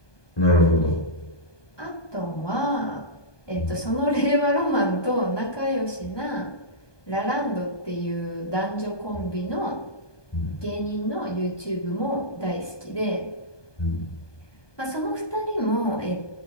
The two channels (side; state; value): right; late; 1.2 ms